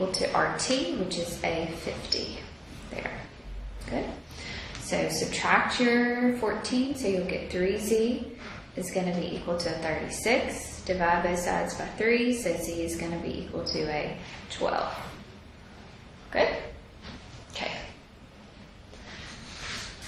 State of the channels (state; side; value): identical; both; correlation 1.00